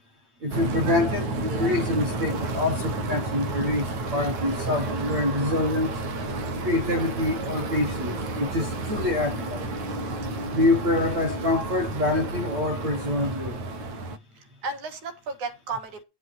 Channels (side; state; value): left; late; 9.2 ms